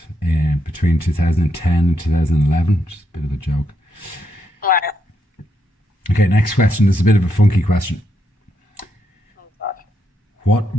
between 2010 and 2011, which is a bit of a joke. Wow. Okay, next question. This is a bit of a funky question.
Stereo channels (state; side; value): normal; both; correlation 0.80